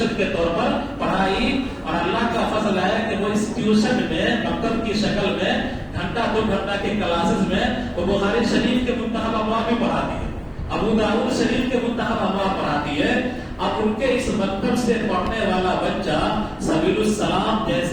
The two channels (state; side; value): identical; both; correlation 1.00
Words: کے طور پر پڑھائی، اور اللہ کا فضل ہے کہ وہ اس ٹیوشن میں مکتب کی شکل میں گھنٹہ 2 گھنٹہ کے کلاسز میں وہ بخاری شریف کے منتخب ابواب بھی پڑھاتی ہے، ابو داؤد شریف کے منتخب ابواب پڑھاتی ہے۔ اب ان کے اس مکتب سے پڑھنے والا بچہ سبیل السلام